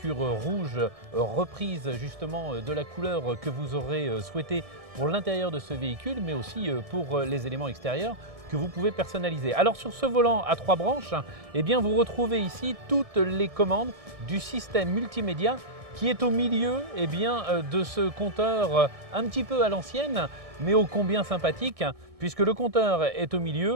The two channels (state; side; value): late; left; 1.6 ms